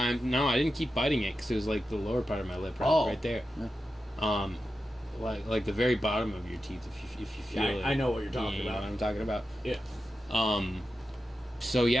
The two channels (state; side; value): normal; both; correlation 0.90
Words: no, I didn't keep biting it because it was like the lower part of my lip, right there. Yeah. Like the very bottom of your teeth, if you feel it. I know what you're talking about. You know what I'm talking about? Yeah. So